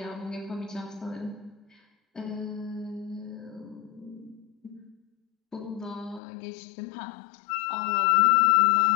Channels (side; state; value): right; drops out; at 6.2 s